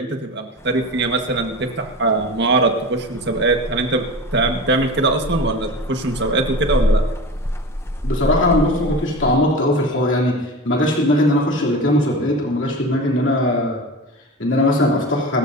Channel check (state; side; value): normal; both; correlation 0.31